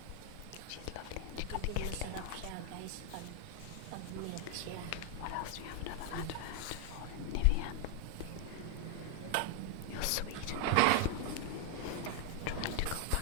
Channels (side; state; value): both; different; correlation 0.00